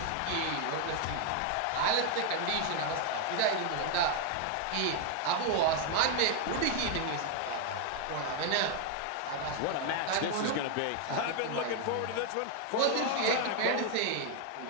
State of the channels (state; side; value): different; both; correlation 0.00